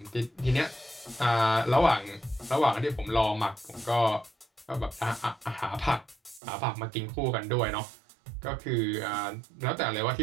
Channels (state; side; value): drops out; left; at 6.4 s